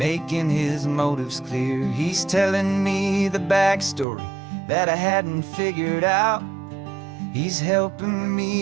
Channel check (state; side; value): drops out; left; at 4.0 s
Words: his motives clear. He's telling me the backstory that I hadn't figured out. He's helping